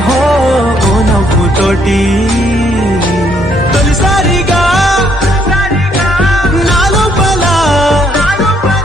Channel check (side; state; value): both; normal; correlation 0.69